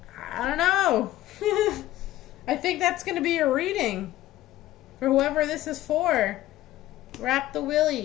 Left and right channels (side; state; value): right; quieter; 14.9 dB